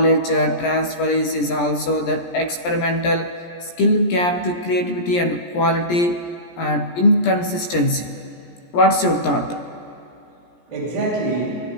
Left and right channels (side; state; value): right; late; 17 ms